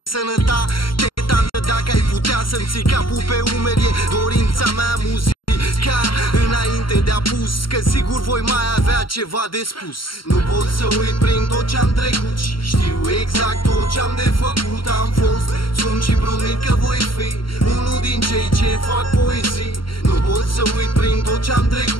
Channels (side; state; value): right; late; 0.73 ms